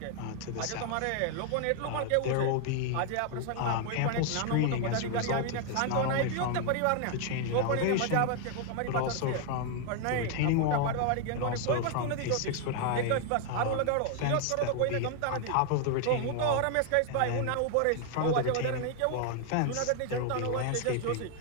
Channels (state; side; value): different; both; correlation 0.00